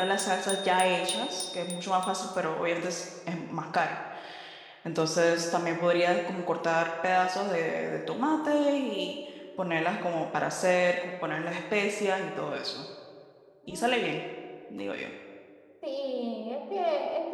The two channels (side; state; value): both; identical; correlation 1.00